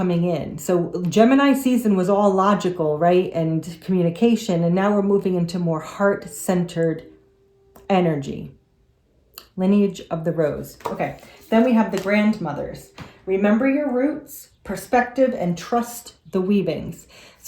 in. So Gemini season was all logical, right? And communication. And now we're moving into more heart-centered energy. Lineage of the rose. Okay. Then we have the grandmothers. Remember your roots, perspective, and trust the weavings.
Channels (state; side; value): identical; both; correlation 1.00